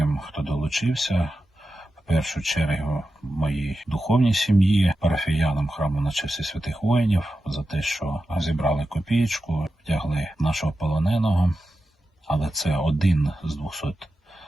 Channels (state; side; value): normal; both; correlation 0.91